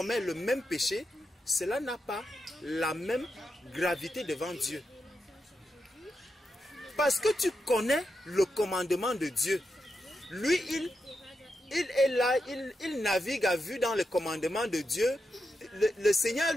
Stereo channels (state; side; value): normal; both; correlation 0.87